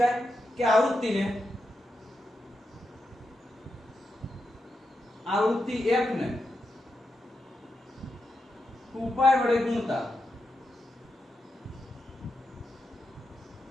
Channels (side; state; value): both; normal; correlation 0.87